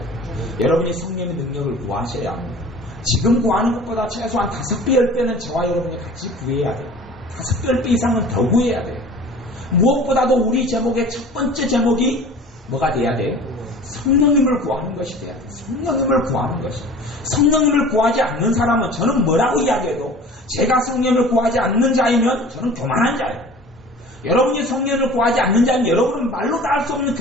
여러분이 성령의 능력을 구하셔야 합니다. 지금 구하는 것보다 최소한 5배, 10배는 저와 여러분이 같이 구해야 돼요. 5배, 10배 이상은 더 구해야 돼요. 무엇보다도 우리 제목의 첫 번째 제목이 뭐가 돼야 돼요? 성령님을 구하는 것이 돼야 돼요. 성령님을 구하는 것이. 성령님을 구하지 않는 사람은 저는 뭐라고 이야기해도 제가 성령님을 구하지 않는 자이면 저는 교만한 자예요. 여러분이 성령을 구하지 않는 자는 여러분은 말로 다 할 수 없는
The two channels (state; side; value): normal; both; correlation 0.43